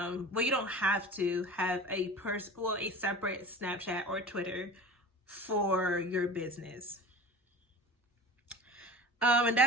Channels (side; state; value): both; normal; correlation 0.36